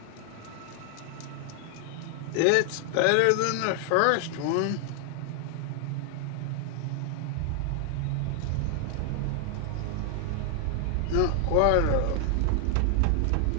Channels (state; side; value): different; both; correlation 0.00